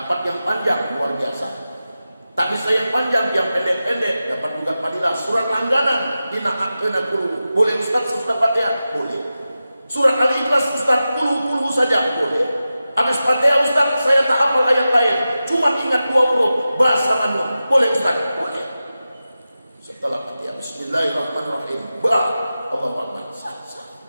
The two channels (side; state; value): both; inverted; correlation -0.93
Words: yang panjang luar biasa. Tapi saya yang panjang, yang pendek-pendek dapat juga padilah. Surat langganan dina akena kulu. Boleh Ustaz sesudah Fatihah? Boleh. Surat Al-Ikhlas Ustaz kulu saja? Boleh. Habis Fatihah Ustaz saya tak hafal ayat lain, cuma ingat 2 huruf bahasa Nun. Boleh Ustaz? Boleh. Setelah Fatihah Bismillahirrahmanirrahim. Allahu Akbar. Sah.